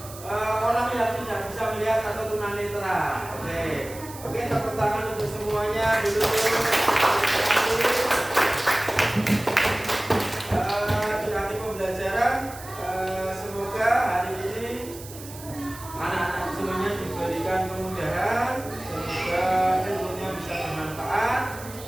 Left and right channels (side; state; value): right; noise; hiss, 16 dB below the sound